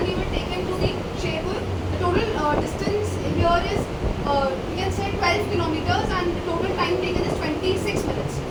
we will take him to the Sherpur. The total distance here is you can say 12 kilometers and the total time taken is 26 minutes.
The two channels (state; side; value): identical; both; correlation 1.00